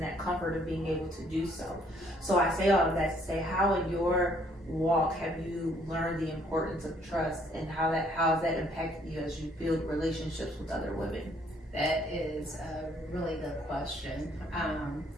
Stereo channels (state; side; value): normal; both; correlation 0.65